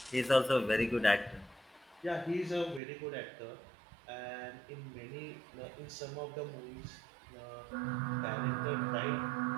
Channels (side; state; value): left; drops out; at 2.8 s